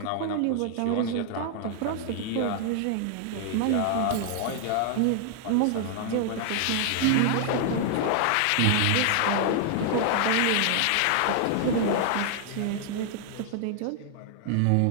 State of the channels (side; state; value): both; different; correlation 0.00